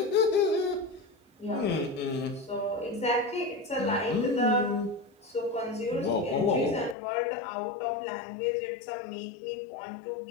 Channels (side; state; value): right; drops out; at 7.0 s